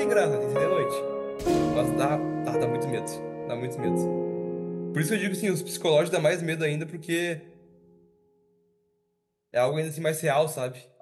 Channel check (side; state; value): both; identical; correlation 1.00